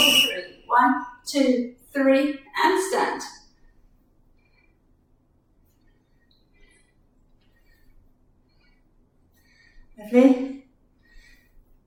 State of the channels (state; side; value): identical; both; correlation 1.00